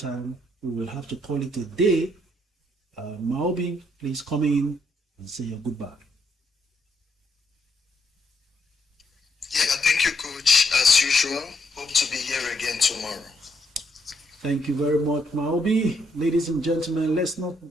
We will have to call it a day. Mopping, please come in and say your goodbye. Yeah, thank you, coach. As usual, hope to be here again tomorrow. Thank you very much, Maobi. Ladies and gentlemen, let's not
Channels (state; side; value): normal; both; correlation 0.75